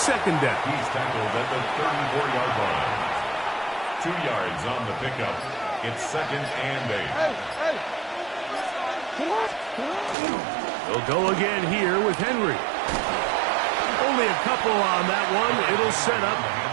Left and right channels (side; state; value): left; drops out; at 10.2 s